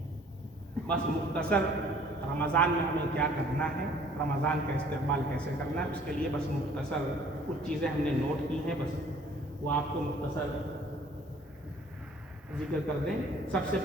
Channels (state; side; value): normal; both; correlation 0.55